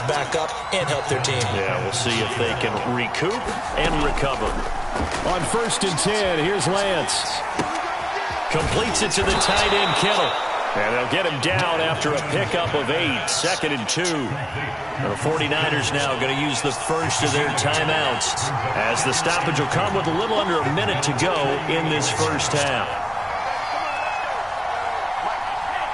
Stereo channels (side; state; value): both; identical; correlation 1.00